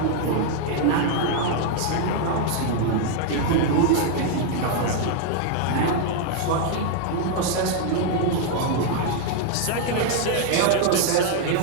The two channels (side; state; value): both; different; correlation 0.00